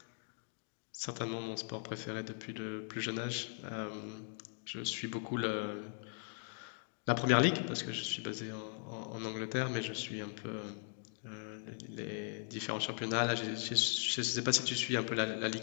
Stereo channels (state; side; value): silent; right; 52 dB below the other